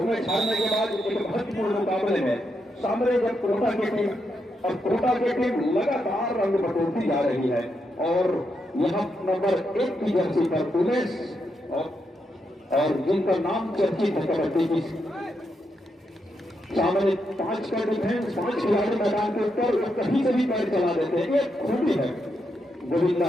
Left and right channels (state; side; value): normal; both; correlation 0.82